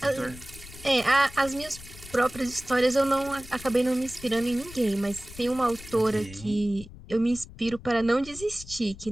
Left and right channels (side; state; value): left; noise; rumble, 17 dB below the sound